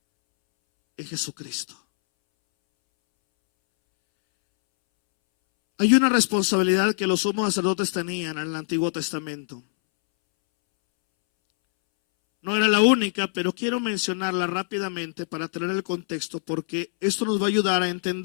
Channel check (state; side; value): silent; right; 62 dB below the other